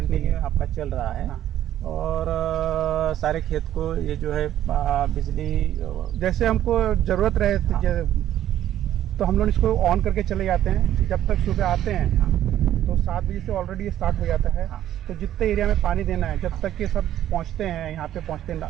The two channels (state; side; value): quieter; left; 11.9 dB